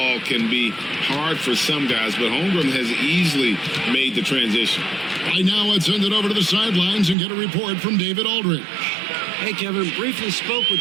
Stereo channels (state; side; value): drops out; left; at 7.2 s